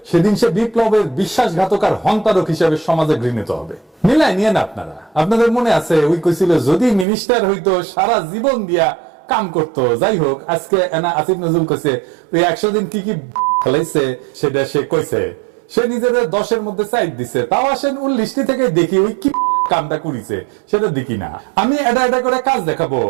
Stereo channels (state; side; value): drops out; left; at 7.1 s